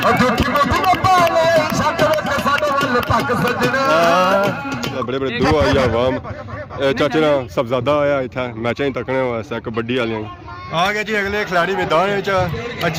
झूठी मुठी पाले छट वे साडे वल तक सजना बड़े बड़े दो आई आवाम चाचे ना सबजादा आया इतना मैच ही तकने वास्ते कबड्डी वाले आ गए जी अगले खिलाड़ी मैदान में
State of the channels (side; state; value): both; identical; correlation 1.00